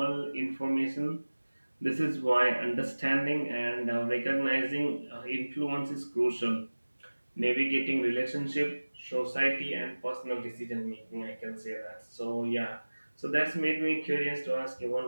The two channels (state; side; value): inverted; both; correlation -1.00